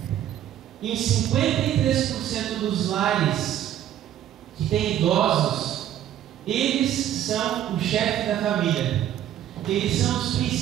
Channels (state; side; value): quieter; left; 11.4 dB